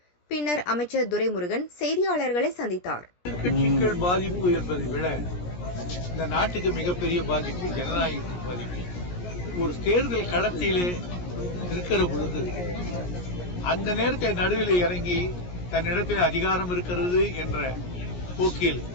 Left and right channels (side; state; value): right; late; 17 ms